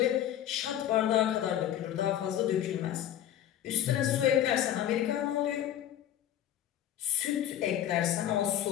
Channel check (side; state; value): right; quieter; 11.2 dB